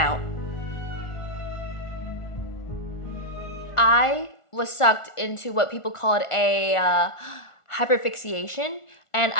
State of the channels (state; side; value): late; right; 1.4 ms